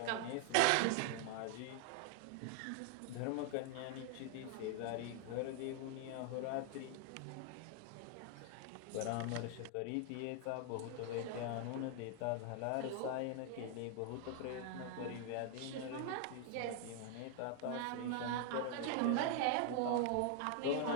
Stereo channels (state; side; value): different; both; correlation 0.00